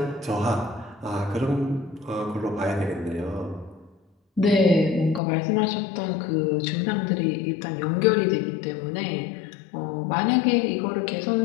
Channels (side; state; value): right; drops out; at 5.2 s